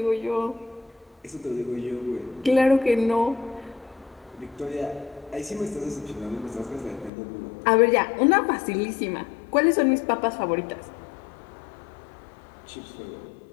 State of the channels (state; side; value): drops out; right; at 7.1 s